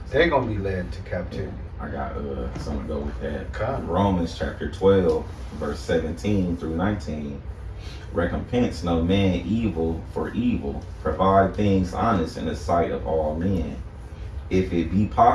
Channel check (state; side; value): identical; both; correlation 1.00